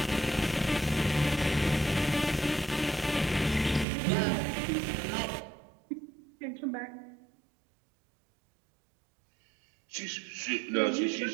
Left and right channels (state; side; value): drops out; left; at 3.9 s